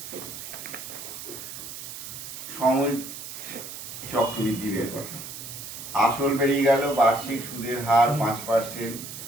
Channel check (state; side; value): noise; right; hiss, 10 dB below the sound